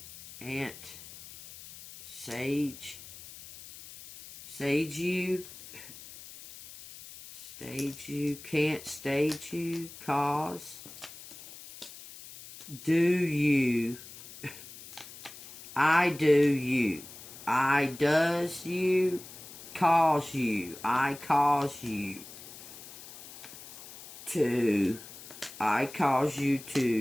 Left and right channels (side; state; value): left; noise; hiss, 16 dB below the sound